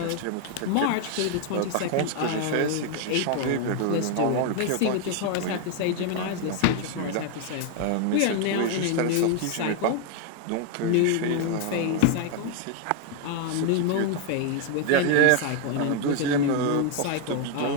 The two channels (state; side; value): different; both; correlation 0.01